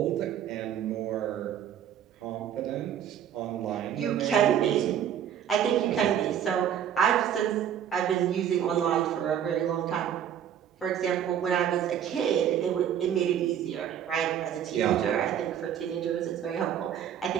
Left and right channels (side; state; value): left; quieter; 9.6 dB